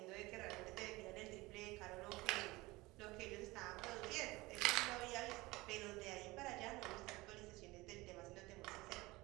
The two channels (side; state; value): left; quieter; 21.3 dB